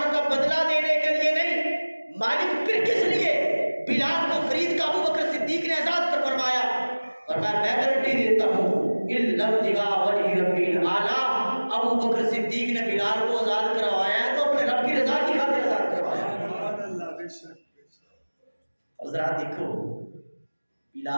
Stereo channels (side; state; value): both; inverted; correlation -1.00